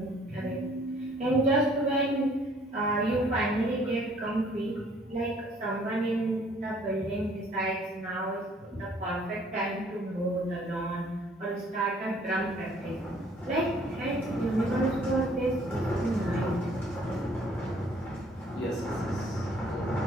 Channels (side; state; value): both; normal; correlation 0.59